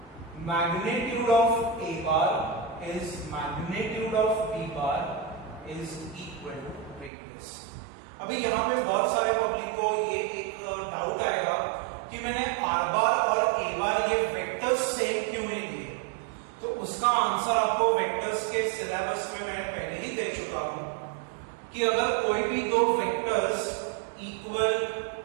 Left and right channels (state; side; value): drops out; left; at 7.1 s